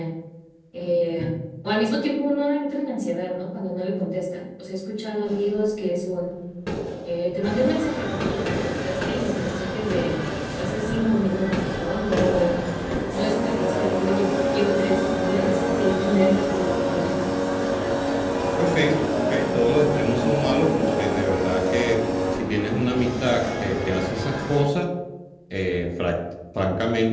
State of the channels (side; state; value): both; identical; correlation 1.00